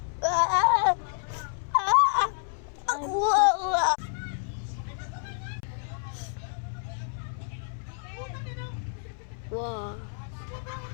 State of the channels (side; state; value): right; silent; 59 dB below the other